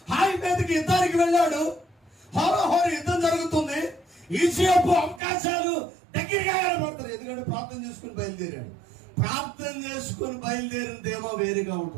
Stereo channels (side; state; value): left; drops out; at 5.2 s